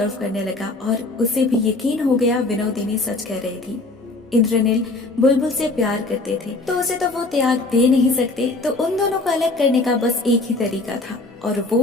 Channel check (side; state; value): right; quieter; 3.1 dB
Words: करने लगा और उसे भी यकीन हो गया विनोदिनी सच कह रही थी। इंद्रनील बुलबुल से प्यार करते थे तो उसे तो वो त्याग दे नहीं सकते, तो उन दोनों को अलग करने का बस एक ही तरीका था और